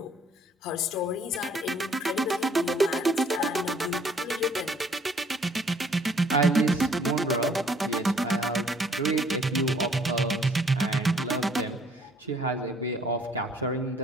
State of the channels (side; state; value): both; normal; correlation 0.61